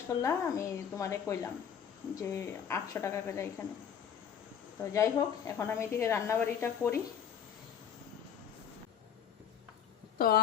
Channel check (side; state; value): right; quieter; 8.1 dB